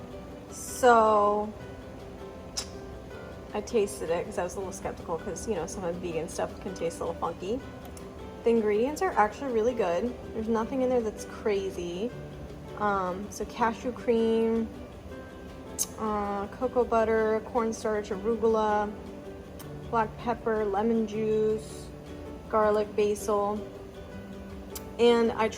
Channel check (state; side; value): identical; both; correlation 1.00